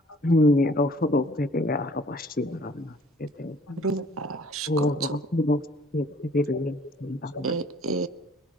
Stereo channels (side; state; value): both; normal; correlation 0.56